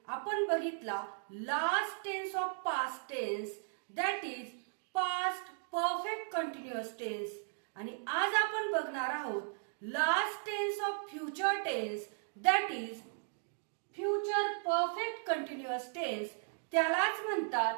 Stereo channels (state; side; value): silent; left; digital silence